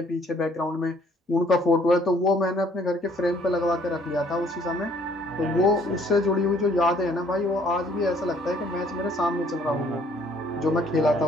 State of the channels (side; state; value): both; normal; correlation 0.61